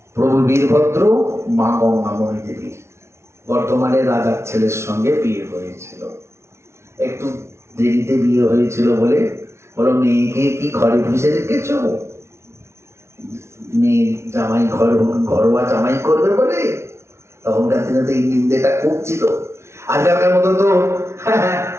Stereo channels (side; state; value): left; late; 0.13 ms